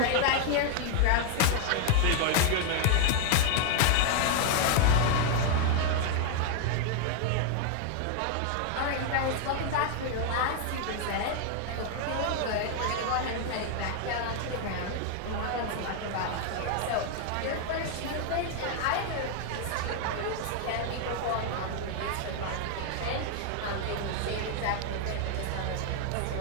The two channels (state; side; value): different; both; correlation 0.00